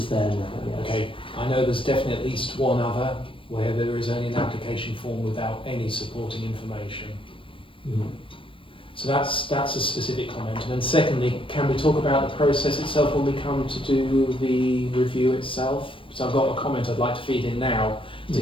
there now, yes. Okay, I know there's definitely at least one other where there is only an application form without any supporting information. Mm. So that's a specific comment. And then secondly, can we talk about the process itself when we come to do the review itself? So I've got a comment I'd like to feed in now to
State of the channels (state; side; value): late; right; 0.25 ms